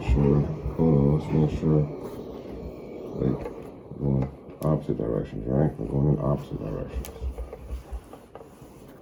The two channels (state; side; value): identical; both; correlation 1.00